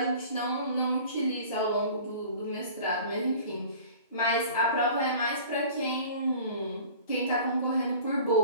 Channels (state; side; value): inverted; both; correlation -0.44